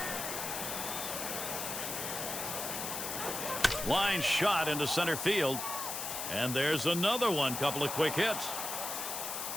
Line shot into center field. And there's another one. Couple of quick hits.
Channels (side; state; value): left; noise; hiss, 4 dB below the sound